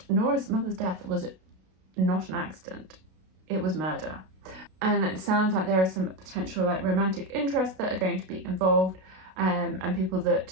Nora's mother's death was not an accident, it was murder. And it sounds like there is some potential like romantic interests that are going to be involved, and people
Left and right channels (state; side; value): late; left; 32 ms